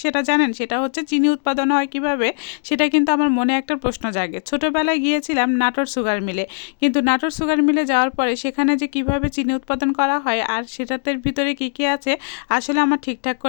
সেটা জানেন? সেটা হচ্ছে চিনি উৎপাদন হয় কিভাবে, সেটা কিন্তু আমার মনে একটা প্রশ্ন জাগে। ছোটোবেলায় গিয়েছিলাম নাটোর সুগার মিলে, কিন্তু নাটোর সুগার মিলে যাওয়ার পরে সেখানে যে কিভাবে চিনি উৎপাদন করা হয় আর সেটাতে ভিতরে কী কী আছে আসলে আমার ঠিকঠাক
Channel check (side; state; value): right; silent; digital silence